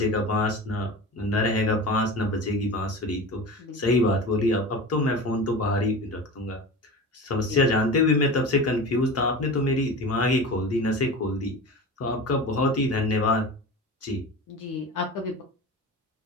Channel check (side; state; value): both; normal; correlation 0.31